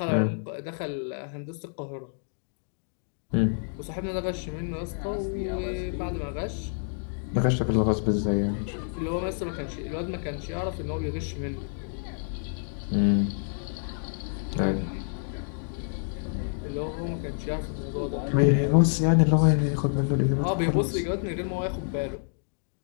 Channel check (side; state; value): right; silent; digital silence